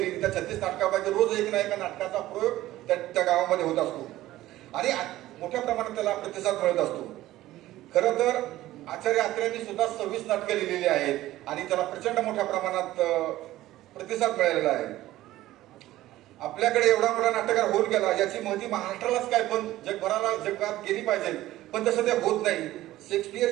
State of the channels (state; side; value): quieter; left; 15.5 dB